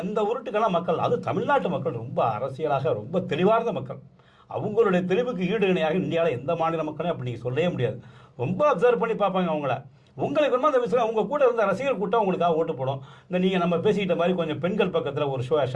இந்த உருட்டுக்கெல்லாம் மக்கள், அது தமிழ்நாட்டு மக்கள் ரொம்ப அரசியலாக ரொம்ப தெளிவார்ந்த மக்கள். அவங்களுடைய தெளிவுக்கு ஈடு இணையாக இந்தியாவில் எந்த மாநில மக்களையும் அப்படி நீங்கள் சொல்லவே முடியாது. ரொம்ப அப்சர்வ் பண்ணி பார்ப்பாங்க அவங்கள. உங்களுக்கு வேணுமா அந்த விஷயம், உங்கள் கூட இருந்த ரசிகர் கூட்டம் உங்களுக்காக ஓட்டு போடும். இந்த நீங்கள் நம்ம பேசிக்கிட்ட மாதிரி கொஞ்சம் பெண்கள் பக்கத்தில் ஒரு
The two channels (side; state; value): both; identical; correlation 1.00